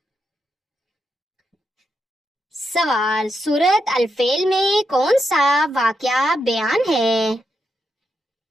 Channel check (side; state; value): both; normal; correlation 0.84